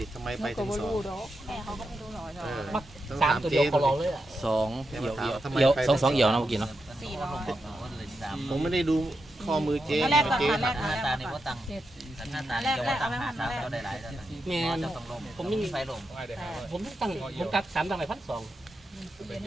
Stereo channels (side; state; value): both; normal; correlation 0.86